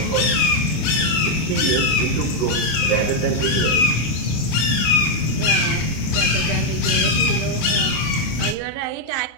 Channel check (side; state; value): right; late; 26 ms